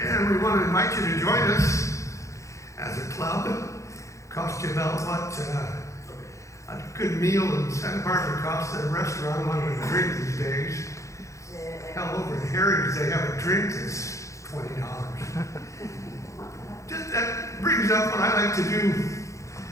and we want to invite you to join us as a club. Cost you about what a good meal in Santa Barbara costs at a restaurant along with a drink these days. Hell, over in Harry's they have a drink that's $20. Just that brings up what I like to do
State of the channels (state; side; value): late; right; 0.15 ms